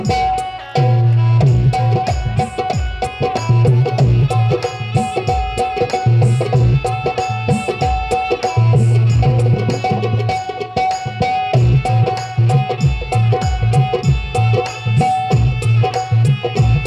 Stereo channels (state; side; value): identical; both; correlation 1.00